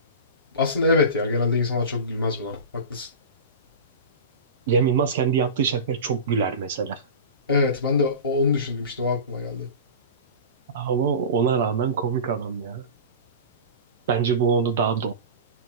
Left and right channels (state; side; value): inverted; both; correlation -0.30